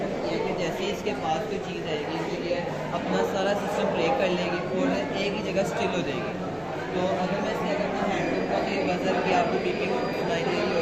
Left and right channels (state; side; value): noise; right; rumble, 26 dB below the sound